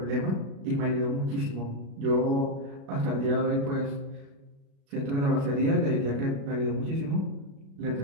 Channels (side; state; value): left; late; 36 ms